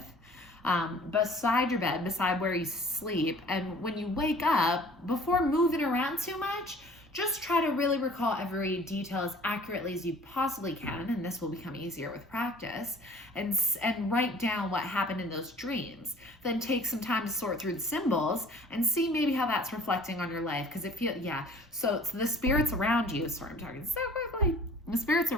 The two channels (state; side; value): normal; both; correlation 0.51